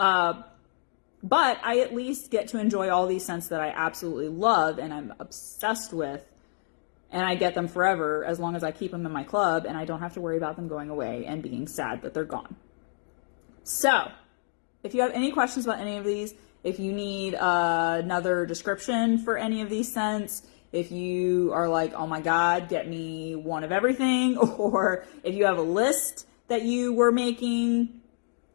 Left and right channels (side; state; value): right; silent; digital silence